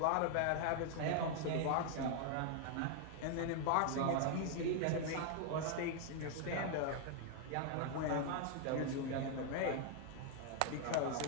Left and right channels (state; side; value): different; both; correlation 0.00